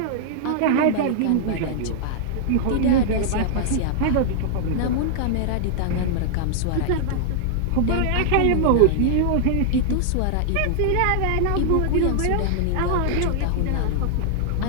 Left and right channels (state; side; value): different; both; correlation -0.01